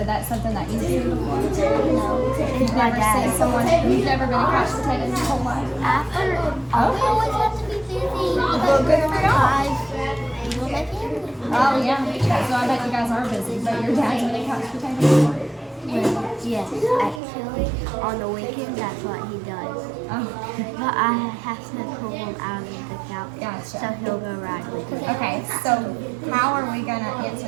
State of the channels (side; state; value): left; drops out; at 17.2 s